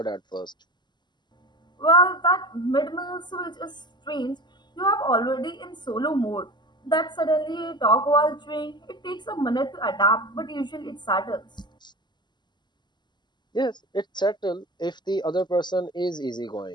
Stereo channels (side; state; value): right; late; 0.21 ms